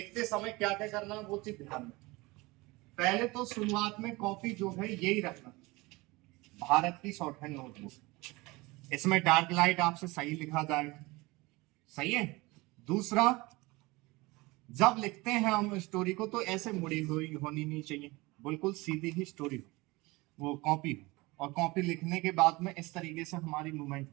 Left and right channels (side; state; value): left; quieter; 22.8 dB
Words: समय क्या क्या करना वो चीज ध्यान में। पहले तो शुरुआत में कॉपी जो है यही रखना, भारत की शॉर्टहैंड नोटबुक, इसमें डार्क लाइट आपसे सही लिखा जाए। सही है। दूसरा, जब लिखते हैं हम स्टोरी को तो ऐसे मुड़ी हुई होनी नहीं चाहिए, बिल्कुल सीधी ही स्टोरी हो, वो कॉपी हो। और कॉपी लिखने के बाद में इस तरीके से हमारी मूवमेंट